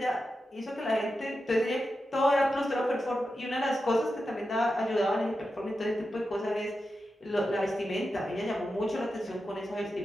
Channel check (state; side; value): normal; both; correlation 0.90